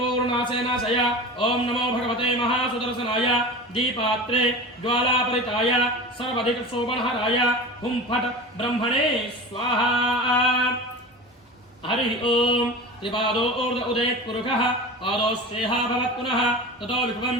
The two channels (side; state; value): both; normal; correlation 0.32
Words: नाशय। ओम नमो भगवते महासुदर्शनाय दीपात्रे ज्वालापरिताय सर्वाधिक शोभनहराय हुं फट् ब्रह्मणे स्वाहा। हरि ओम त्रिपादो ऊर्ध्व उदयत् पुरुषः पादोश्रेहा भवत् पुनः ततो विभवन्